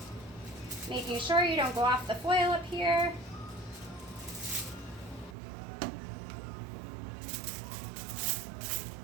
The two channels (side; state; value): left; drops out; at 5.4 s